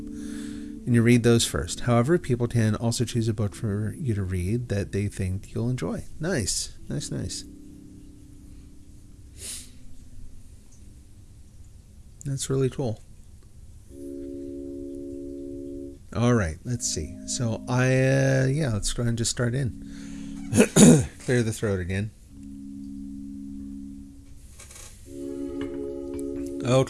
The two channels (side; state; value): both; identical; correlation 1.00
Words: And you read those first. However, people can also choose a book for you to read that they think you'll enjoy. Nice. Nice, nice. That's really cool. All right, let's see. So let's go ahead and just start in. Clear the throat again.